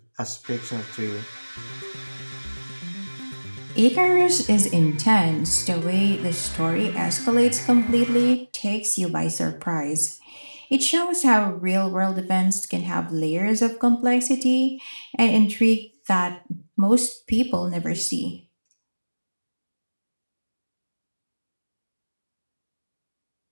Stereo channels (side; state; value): both; inverted; correlation -1.00